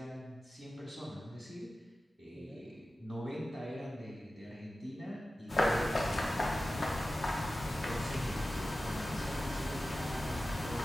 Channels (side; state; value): both; normal; correlation 0.95